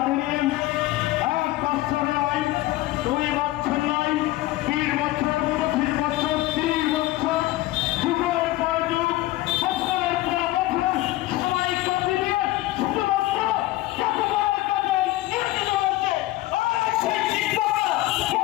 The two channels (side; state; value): right; quieter; 17.2 dB